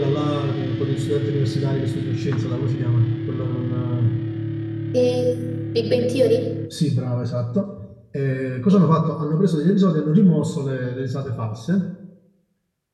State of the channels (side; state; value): both; identical; correlation 1.00